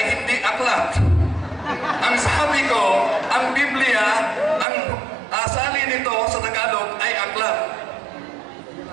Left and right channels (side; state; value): left; drops out; at 4.7 s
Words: hindi aklat. Ang sabi ko, ang Biblia, ang asali nito sa Tagalog ay aklat.